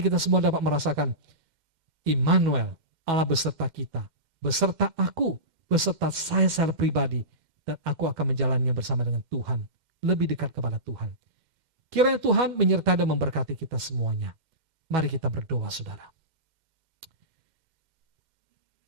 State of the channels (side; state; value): left; late; 2.1 ms